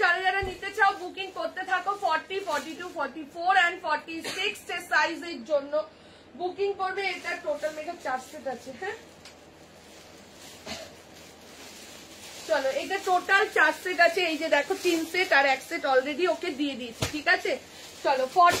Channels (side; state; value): both; identical; correlation 1.00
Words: যারা যারা নিতে চাও বুকিং করতে থাকো। 40, 42, 44 and 46 সাইজের জন্য বুকিং করবে। এটা টোটাল মেকআপ 4 সেট আছে, হ্যাঁ চলো এটা টোটাল 4 সেট আছে। এই যে দেখো 3 সেট আর 1 সেট অলরেডি ওকে দিয়ে দিয়েছি, ঠিক আছে? চলো